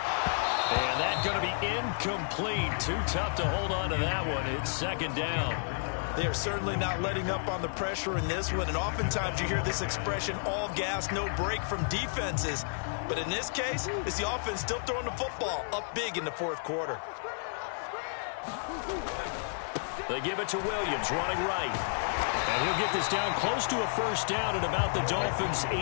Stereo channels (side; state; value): right; silent; 57 dB below the other